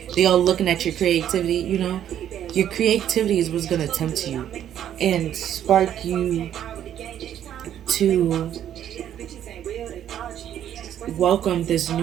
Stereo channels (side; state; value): left; quieter; 10.5 dB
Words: looking at your creativity. Your creativity is what's gonna tempt you and spark you to welcome this